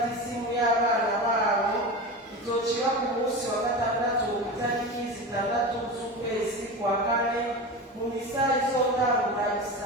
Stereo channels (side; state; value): both; normal; correlation 0.26